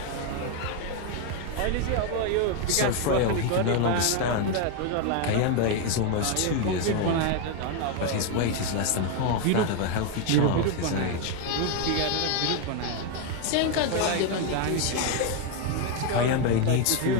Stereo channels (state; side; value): different; both; correlation 0.01